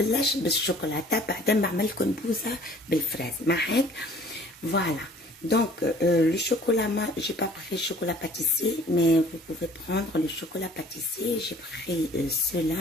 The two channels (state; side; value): normal; both; correlation 0.53